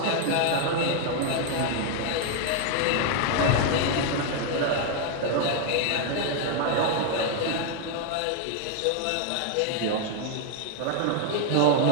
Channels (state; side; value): different; both; correlation 0.00